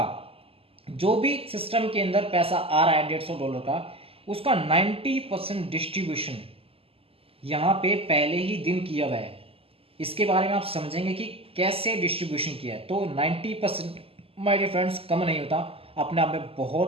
जो भी सिस्टम के अंदर पैसा आ रहा है $150 का, उसका 90% डिस्ट्रीब्यूशन यहाँ पे पहले ही दिन किया हुआ है। इसके बारे में आप समझेंगे कि कैसे डिस्ट्रीब्यूशन किया है। तो 90% माय डियर फ्रेंड्स कम नहीं होता, अपने आप में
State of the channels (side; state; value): left; late; 0.28 ms